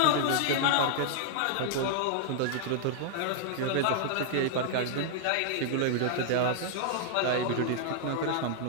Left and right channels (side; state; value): both; different; correlation -0.01